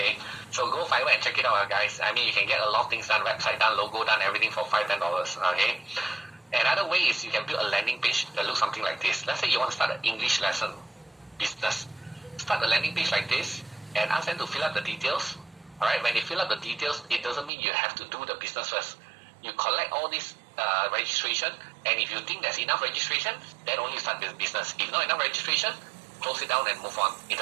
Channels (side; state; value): left; drops out; at 17.5 s